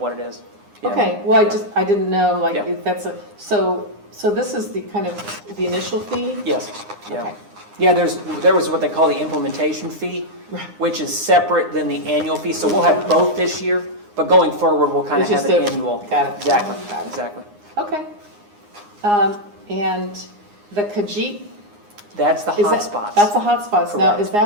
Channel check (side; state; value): left; late; 9.7 ms